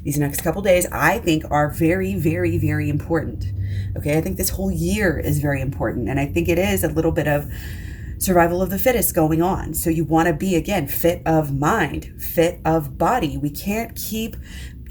These next couple days, I think, are very, very, very important. Okay, I think this whole year is very important, and I think it is a little bit of survival of the fittest going on. So you want to be, again, fit of mind, fit of body. We can't keep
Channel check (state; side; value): identical; both; correlation 1.00